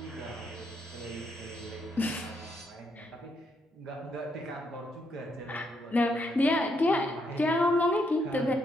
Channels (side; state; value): both; normal; correlation 0.77